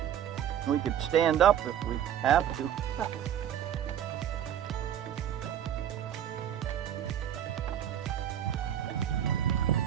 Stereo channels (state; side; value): quieter; left; 10.0 dB